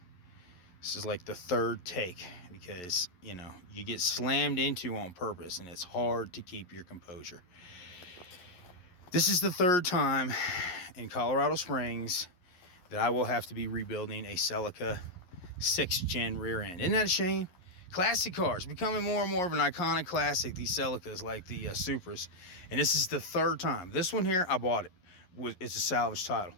This is like the third take because, you get slammed into on purpose and it's hard to keep your composure. This is the third time in Colorado Springs that I will have to be rebuilding a Celica 6th gen rear end. Isn't that a shame? Classic cars becoming more and more of an iconic classic, these Celicas like the Supras. And this is the third time. This one here, I bought it. It's a salvage title.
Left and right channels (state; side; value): late; right; 11 ms